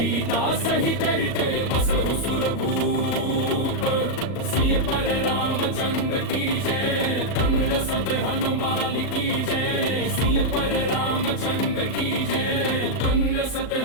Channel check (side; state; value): right; late; 38 ms